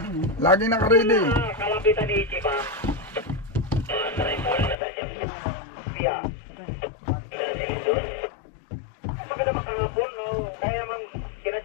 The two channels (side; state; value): right; drops out; at 4.8 s